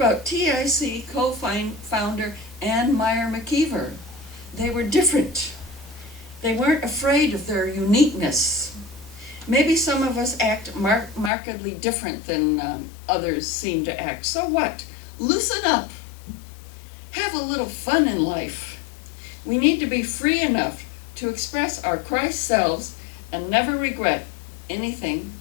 TIC co-founder Ann Meyer McKeever? They were different. They weren't afraid of their uniqueness. Maybe some of us act markedly different than others seem to act. So what? Loosen up. Have a little fun in life. We need to be free enough to express our Christ selves and never regret anything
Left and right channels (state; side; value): drops out; right; at 11.3 s